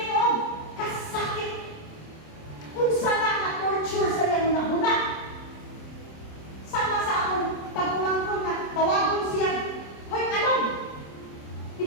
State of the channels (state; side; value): late; right; 26 ms